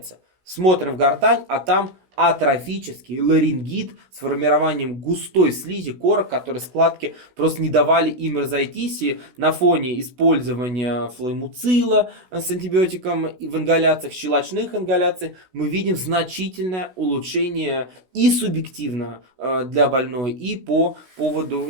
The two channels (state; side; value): late; left; 16 ms